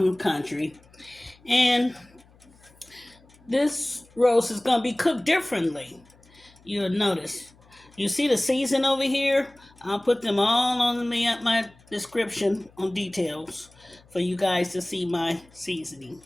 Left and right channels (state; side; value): noise; left; hum, 28 dB below the sound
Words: country. And this roast is going to be cooked differently. You'll notice. You see the season over here? I'll put them all on my description on details for you guys to see my seasoning.